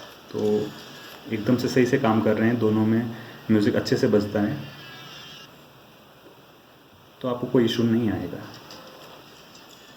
तो एकदम से सही से काम कर रहे हैं, दोनों में म्यूज़िक अच्छे से बजता है, तो आपको कोई इशू नहीं आएगा।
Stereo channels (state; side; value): identical; both; correlation 1.00